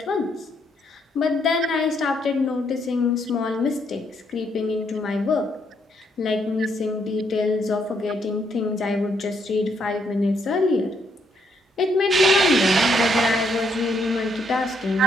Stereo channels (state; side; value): normal; both; correlation 0.73